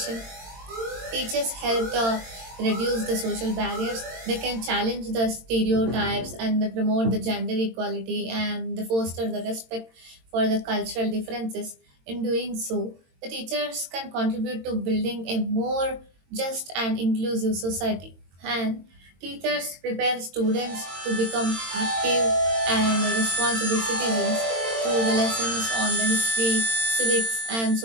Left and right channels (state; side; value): late; left; 22 ms